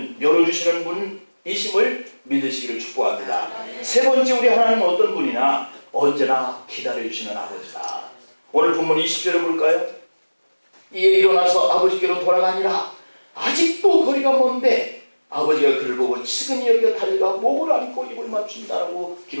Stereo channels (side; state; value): both; inverted; correlation -1.00